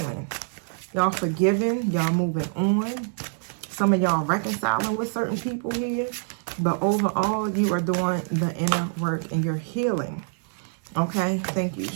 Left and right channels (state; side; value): silent; left; digital silence